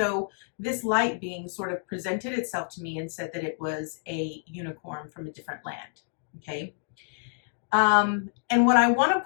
this light being sort of presented itself to me and said that it was a unicorn from a different land. Okay. And what I want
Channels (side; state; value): right; silent; digital silence